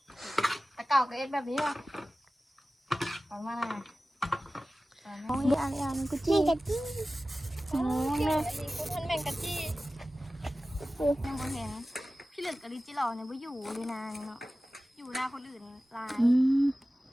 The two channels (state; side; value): normal; both; correlation 0.96